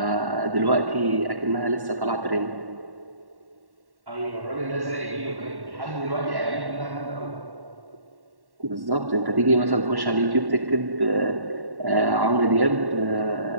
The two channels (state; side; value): late; left; 1.1 ms